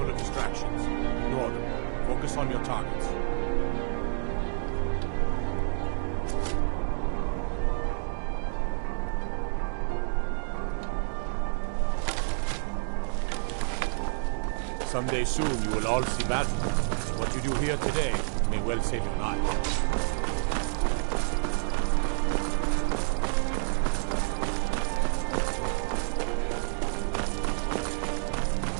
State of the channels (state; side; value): silent; left; digital silence